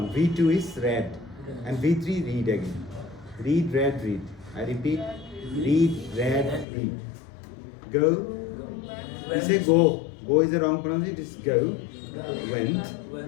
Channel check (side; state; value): right; drops out; at 6.7 s